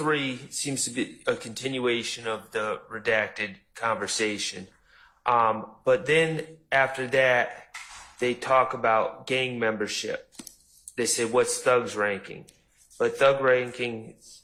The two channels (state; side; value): identical; both; correlation 1.00